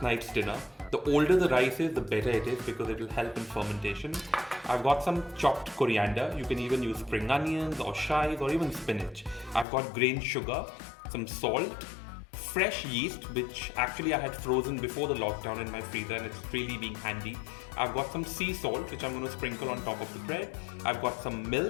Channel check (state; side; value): drops out; right; at 9.7 s